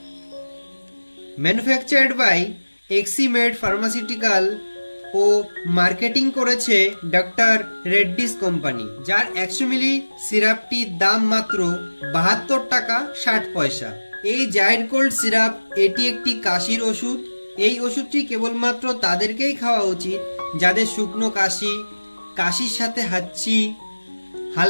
manufactured by Eximed pharmaceutical ও মার্কেটিং করেছে ডক্টর রেড্ডিস কোম্পানি, যার 100 মিলি সিরাপটির দাম মাত্র 72 টাকা 60 পয়সা। এই জাইরোকোল্ড সিরাপ এটি একটি কাশির ওষুধ। এই ওষুধটি কেবলমাত্র তাদেরকেই খাওয়া উচিত যাদের শুকনো কাশি, কাশির সাথে হাঁচি,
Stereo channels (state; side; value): inverted; both; correlation -1.00